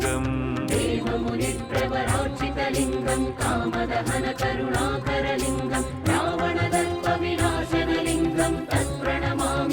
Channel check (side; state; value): both; identical; correlation 1.00